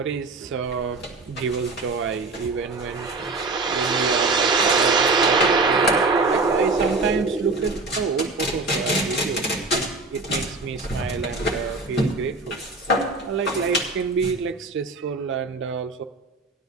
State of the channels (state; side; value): quieter; left; 3.5 dB